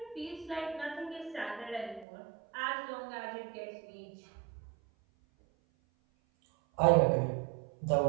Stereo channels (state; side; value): drops out; left; at 2.1 s